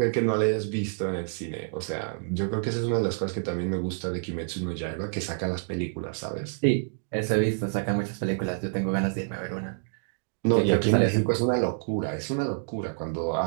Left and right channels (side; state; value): left; silent; digital silence